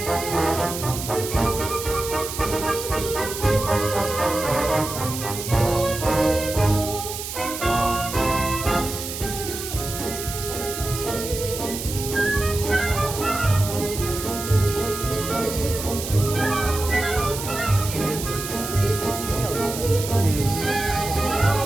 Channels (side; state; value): right; noise; hiss, 7 dB below the sound